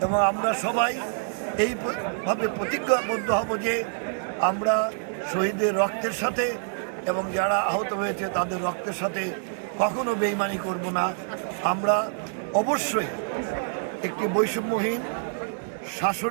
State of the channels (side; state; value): left; silent; 61 dB below the other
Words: এবং আমরা সবাই এইভাবে প্রতিজ্ঞাবদ্ধ হব যে আমরা শহীদের রক্তের সাথে এবং যারা আহত হয়েছে তাদের রক্তের সাথে কখনো বেইমানি করব না। আমরা অবশ্যই একটি বৈষম্যহীন